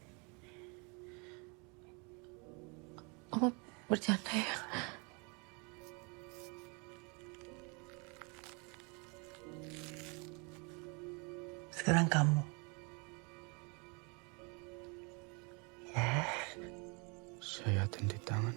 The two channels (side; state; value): left; quieter; 31.9 dB